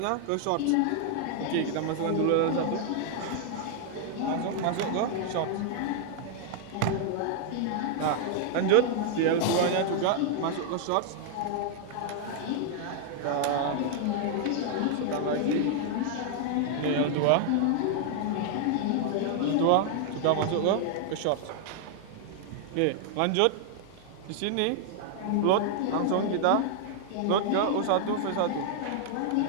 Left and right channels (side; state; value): both; different; correlation -0.01